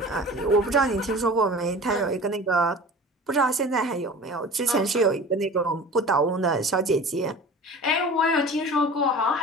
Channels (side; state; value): both; normal; correlation 0.39